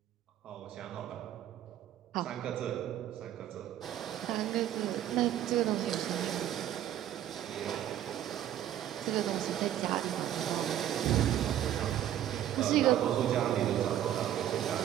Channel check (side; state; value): left; quieter; 11.6 dB